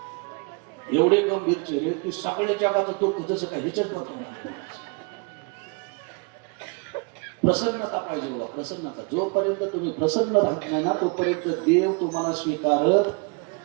एवढे गंभीर चेहरे की सगळ्या जगाचं दुःख जसं काय ह्याच्यात बघतो. प्रसन्नता पाहिजे बघा, प्रसन्नता. जोपर्यंत तुम्ही प्रसन्न राहत नाही ना तोपर्यंत देव तुम्हाला स्वीकारत.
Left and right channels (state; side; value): quieter; left; 32.4 dB